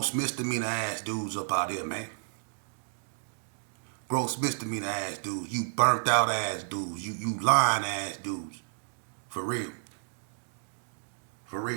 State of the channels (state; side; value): silent; left; digital silence